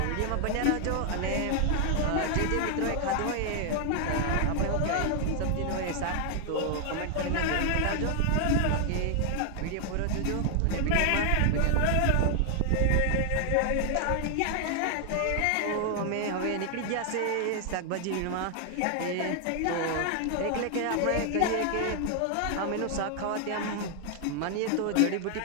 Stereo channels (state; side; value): different; both; correlation 0.00